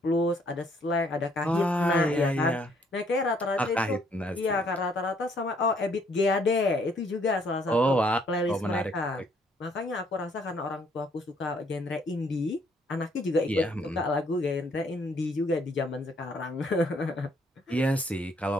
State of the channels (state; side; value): normal; both; correlation 0.66